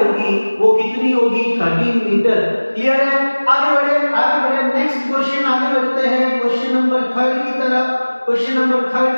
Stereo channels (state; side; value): inverted; both; correlation -1.00